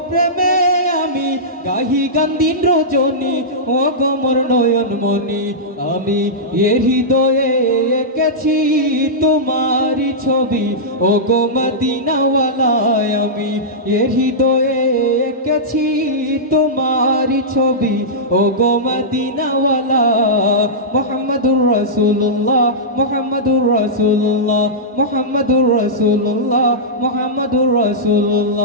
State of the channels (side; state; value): both; normal; correlation -0.13